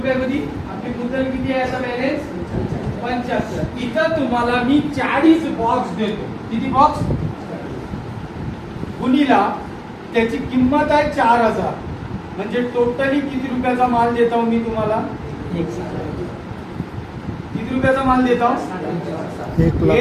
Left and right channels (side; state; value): both; identical; correlation 1.00